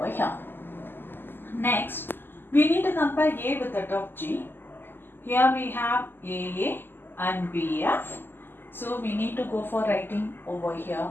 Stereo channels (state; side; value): late; right; 0.097 ms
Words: here. Next, we need to compare A with that of G. Here we have AA and BF. So, we need to go for writing over here